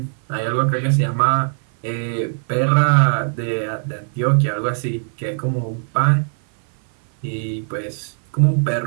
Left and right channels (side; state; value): left; silent; 56 dB below the other